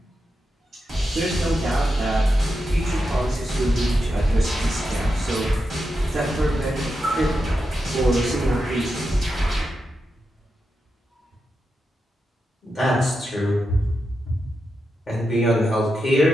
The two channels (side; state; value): both; normal; correlation 0.88